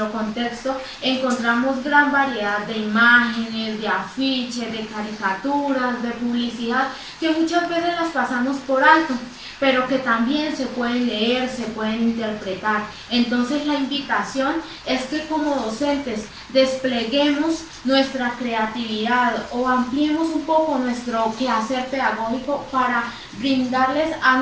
contexto, encontramos gran variedad de imágenes, de afiches, de caricaturas, de publicidad, que muchas veces las pasamos por alto, pero que también se pueden leer, se pueden interpretar. Entonces la invitación es que como docentes despleguemos nuestra creatividad o ampliemos un poco nuestro quehacer pedagógico para brindarles a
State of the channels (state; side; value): identical; both; correlation 1.00